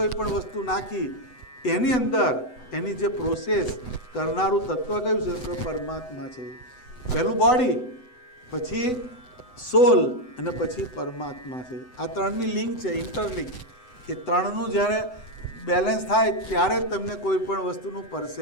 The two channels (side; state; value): right; late; 7.9 ms